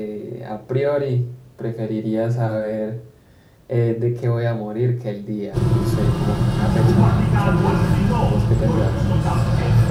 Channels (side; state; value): both; identical; correlation 1.00